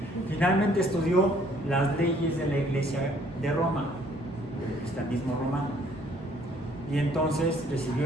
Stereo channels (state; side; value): normal; both; correlation 0.61